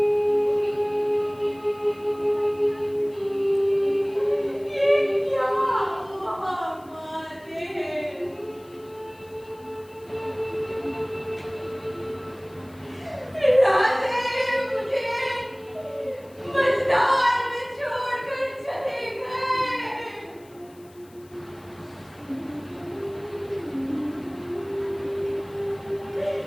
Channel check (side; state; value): left; noise; hiss, 28 dB below the sound